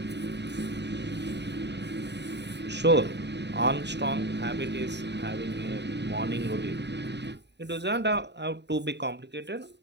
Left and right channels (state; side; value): late; left; 0.50 ms